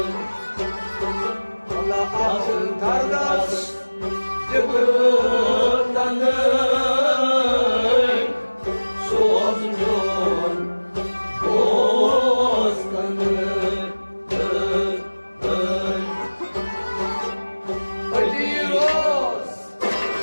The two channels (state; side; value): inverted; both; correlation -1.00